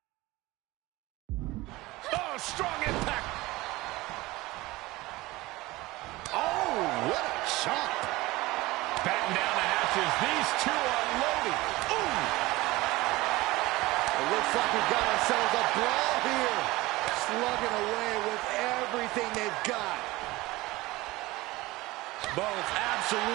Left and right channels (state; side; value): quieter; left; 20.0 dB